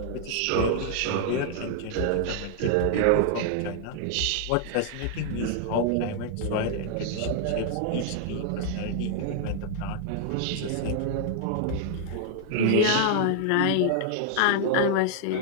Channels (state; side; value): different; both; correlation 0.00